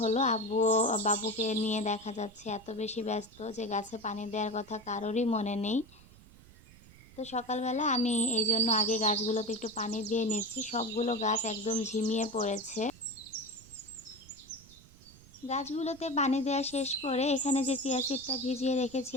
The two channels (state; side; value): noise; right; rumble, 23 dB below the sound